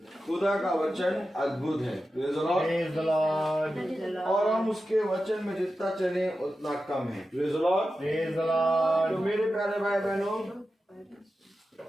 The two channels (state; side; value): normal; both; correlation 0.92